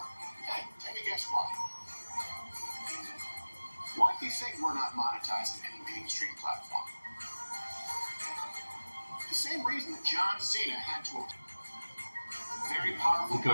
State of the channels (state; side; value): inverted; both; correlation -1.00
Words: Hey, take a guess why. Why do you think we're not monetizing any mainstream platform? The same reason that John Cena had to very powerful to